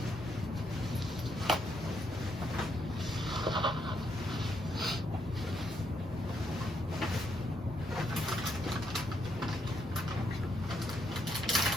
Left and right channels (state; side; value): normal; both; correlation 0.76